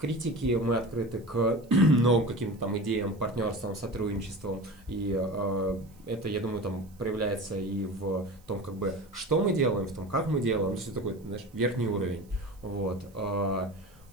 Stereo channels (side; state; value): right; noise; hiss, 30 dB below the sound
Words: критике, мы открыты к новым каким-то там идеям, партнерствам, сотрудничествам. И это, я думаю, там проявляется и в том, как бы, что мы делаем, в том, как мы делаем. Все такой, знаешь, верхний уровень. Вот.